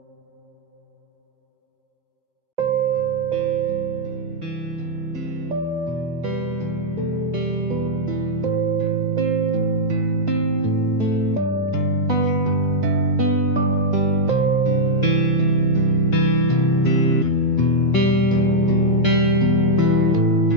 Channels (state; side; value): late; left; 1.2 ms